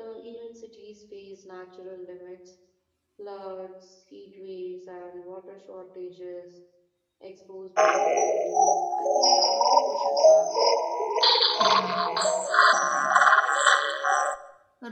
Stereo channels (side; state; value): both; identical; correlation 1.00